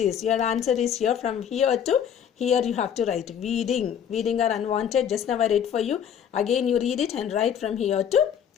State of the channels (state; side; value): quieter; right; 8.7 dB